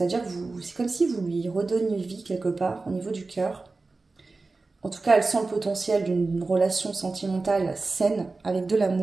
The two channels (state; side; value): quieter; left; 3.7 dB